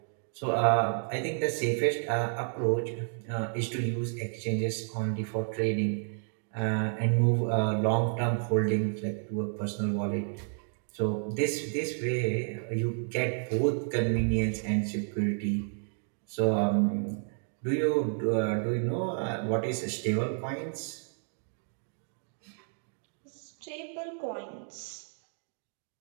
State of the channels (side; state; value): left; silent; 57 dB below the other